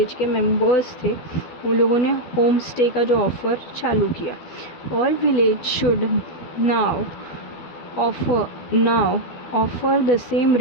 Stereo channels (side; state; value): right; late; 12 ms